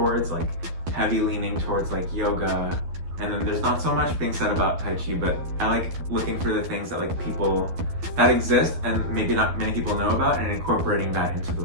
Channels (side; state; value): left; late; 12 ms